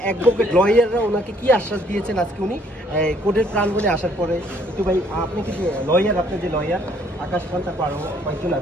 অ্যাডভোকেট লয়াররা ওনাকে কি আশ্বাস দিয়েছেন আজকে উনি কোর্টের প্রাঙ্গণে আসার পরে। একটু ভাই, আপনি কি যে লয়ার, আপনার যে লয়ার আকাশ খান, তারপর আরও কয়েকজন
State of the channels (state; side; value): normal; both; correlation 0.63